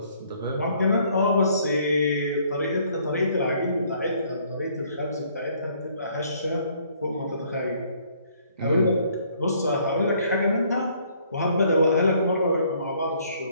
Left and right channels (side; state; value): both; inverted; correlation -0.63